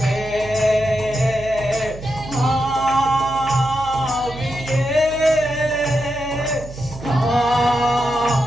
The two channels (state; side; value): noise; right; hum, 14 dB below the sound